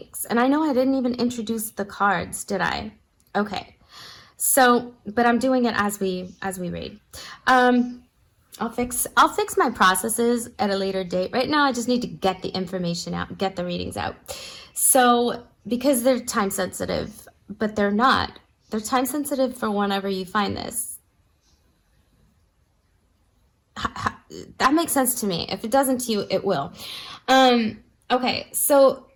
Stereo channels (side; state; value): both; identical; correlation 1.00